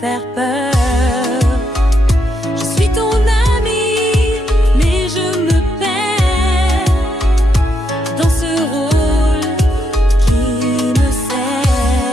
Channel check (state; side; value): normal; both; correlation 0.79